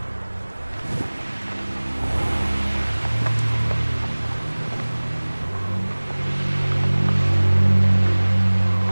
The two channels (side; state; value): both; inverted; correlation -1.00